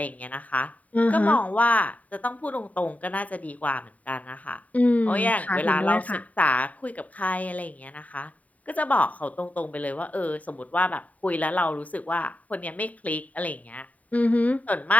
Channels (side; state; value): right; late; 0.071 ms